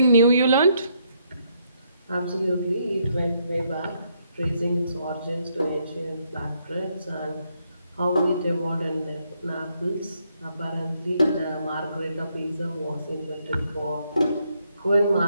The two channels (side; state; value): both; inverted; correlation -0.75